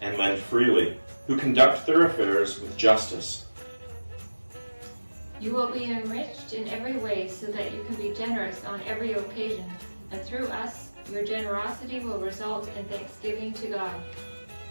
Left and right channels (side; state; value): both; inverted; correlation -1.00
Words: and lend freely, who conduct their affairs with justice. You will be enriched in every way so that you can be generous on every occasion, and through us, your generosity will result in thanksgiving to God.